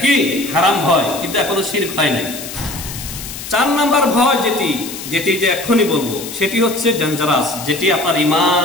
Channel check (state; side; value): noise; left; hiss, 10 dB below the sound